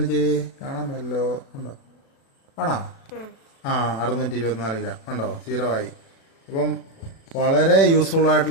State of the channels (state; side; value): late; right; 36 ms